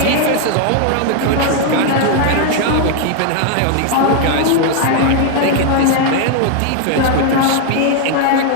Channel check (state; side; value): different; both; correlation 0.00